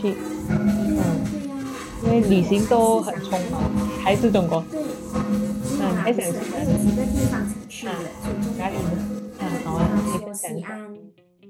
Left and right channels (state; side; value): identical; both; correlation 1.00